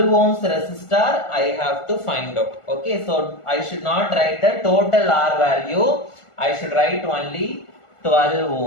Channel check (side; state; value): right; late; 1.4 ms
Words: ohms resistor I have to find out. Okay. So I should not write the total R value. I should write only 12